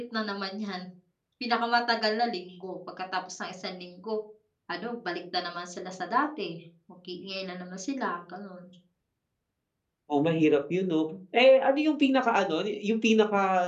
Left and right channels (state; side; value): identical; both; correlation 1.00